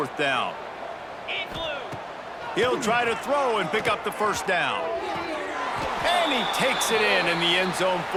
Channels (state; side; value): identical; both; correlation 1.00